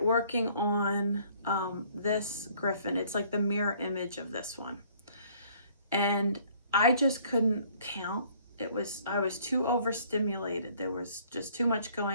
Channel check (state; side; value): inverted; both; correlation -0.58